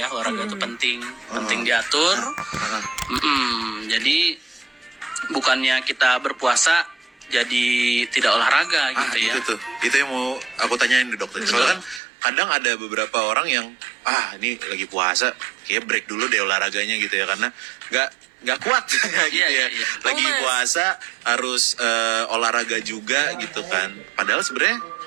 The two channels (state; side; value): drops out; left; at 12.0 s